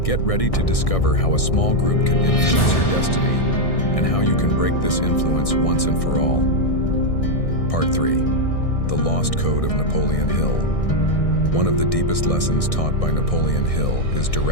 Get ready to discover how a small group can influence your destiny and how you can break this influence once and for all. Part 3. The Lost Code of Napoleon Hill. One of the deepest lessons taught by Napoleon Hill is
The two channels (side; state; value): right; late; 1.6 ms